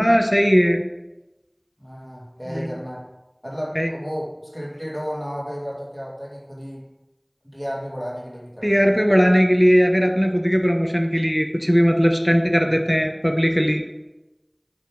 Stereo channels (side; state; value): both; identical; correlation 1.00